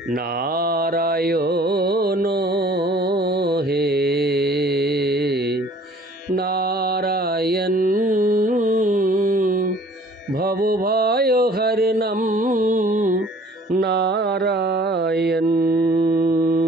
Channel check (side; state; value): both; normal; correlation 0.53